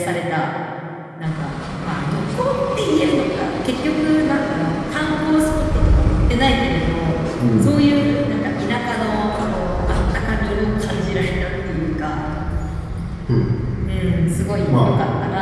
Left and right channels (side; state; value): both; identical; correlation 1.00